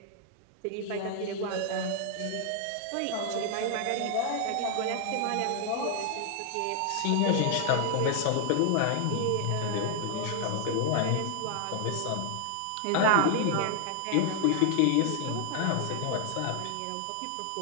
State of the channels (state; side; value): different; both; correlation 0.00